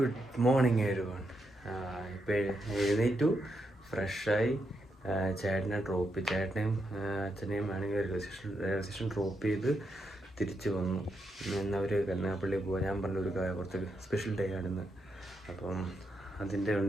morning everyone. ഇപ്പോൾ എഴുന്നേറ്റു, ഫ്രഷായി. ചേട്ടനെയും അച്ഛനെയും ആണെങ്കിൽ റെയിൽവേ സ്റ്റേഷൻ ഡ്രോപ്പ് ചെയ്ത് തിരിച്ചു വന്നു. അവർ കരുനാഗപ്പള്ളി പോകാൻ ഞാൻ പറഞ്ഞൊരു കുറച്ച് സ്പെഷ്യൽ ഡേ ആണെന്ന്, അപ്പം അതിൻ്റെ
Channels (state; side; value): normal; both; correlation 0.82